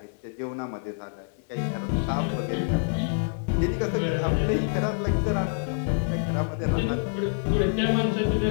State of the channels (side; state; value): right; silent; 59 dB below the other